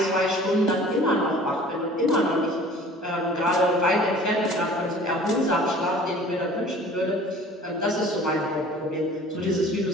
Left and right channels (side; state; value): both; normal; correlation 0.48